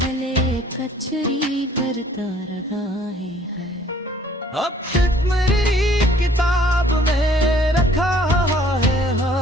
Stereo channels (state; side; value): normal; both; correlation 0.57